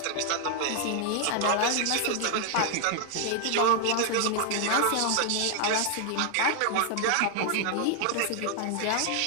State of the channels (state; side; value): different; both; correlation 0.00